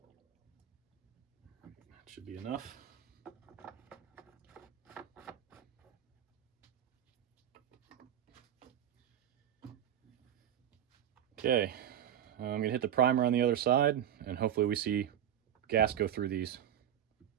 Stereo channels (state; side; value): quieter; left; 10.3 dB